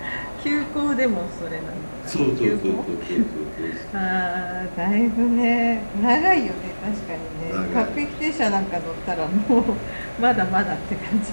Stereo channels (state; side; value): inverted; both; correlation -1.00